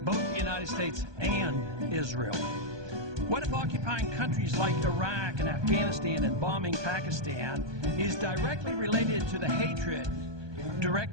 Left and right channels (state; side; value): late; left; 1.2 ms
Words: the United States and Israel? What if occupying countries like Iraq and Afghanistan and bombing Pakistan is directly related to the hatred